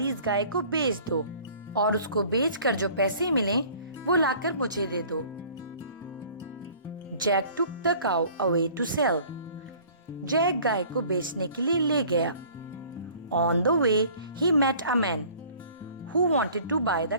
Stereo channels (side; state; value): both; inverted; correlation -0.50